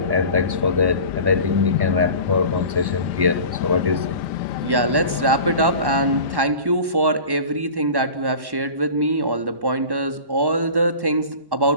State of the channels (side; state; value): left; late; 1.1 ms